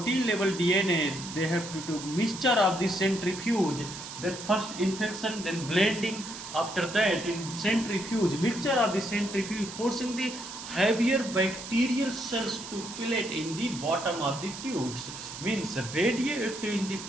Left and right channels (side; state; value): right; noise; hiss, 11 dB below the sound